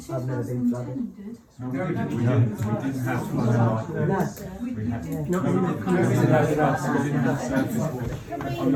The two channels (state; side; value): identical; both; correlation 1.00